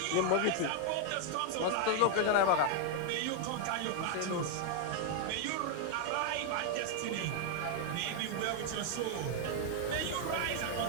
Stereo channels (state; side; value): different; both; correlation 0.00